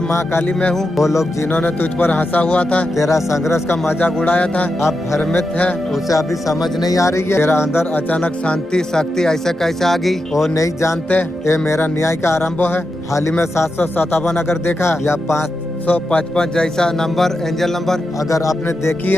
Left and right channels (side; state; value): both; normal; correlation 0.88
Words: माँ काली में हूँ। वो लोग जिन्होंने तुझ पर हंसा हुआ था, तेरा संघर्ष का मजाक उड़ाया था, अब भ्रमित है, उसे अभी समझ नहीं आ रही है। तेरा अंदर अचानक शांति शक्ति ऐसे कैसे आ गई, वो नहीं जानते। ये मेरा न्याय का आरंभ है। हाल ही में 757 अगर देखा, या 555 जैसा नंबर, एंजल नंबर अगर आपने देखी